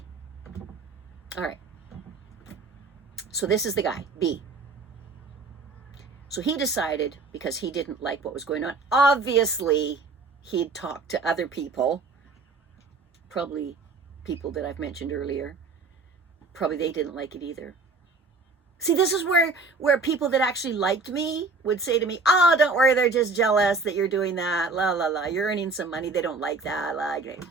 All right. So this is the guy, B. So he decided, because he didn't like what was going on, obviously he'd talked to other people, probably people that I've mentioned earlier. Probably they didn't like it either. See, this is where people that actually liked me would say to me, oh, don't worry, they're just jealous that you're doing that, la, la, la, you're earning some money, they don't like that, la, you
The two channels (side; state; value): left; quieter; 3.9 dB